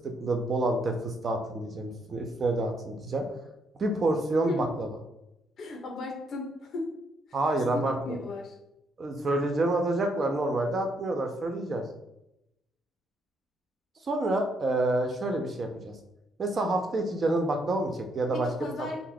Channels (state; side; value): normal; both; correlation 0.74